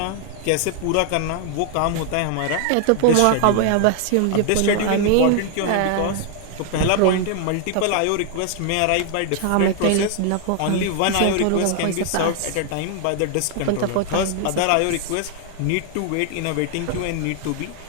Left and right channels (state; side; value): different; both; correlation 0.00